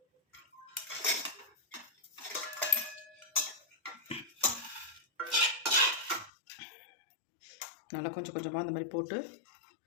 நல்லா கொஞ்சம் கொஞ்சமாக அந்த மாதிரி போட்டு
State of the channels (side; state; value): right; drops out; at 6.3 s